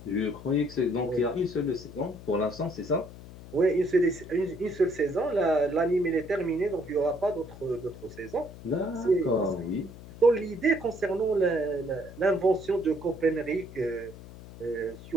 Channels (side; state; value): left; noise; hum, 16 dB below the sound